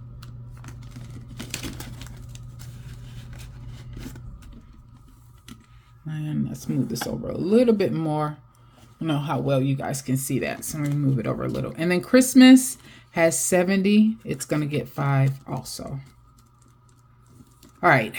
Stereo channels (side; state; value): both; identical; correlation 1.00